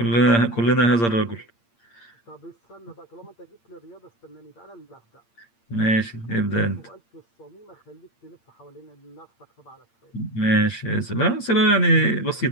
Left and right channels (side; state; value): right; late; 8.7 ms